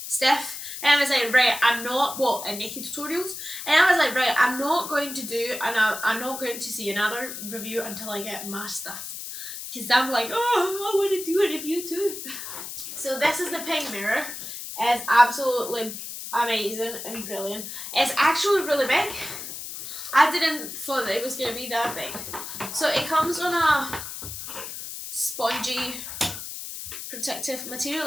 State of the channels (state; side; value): noise; left; hiss, 8 dB below the sound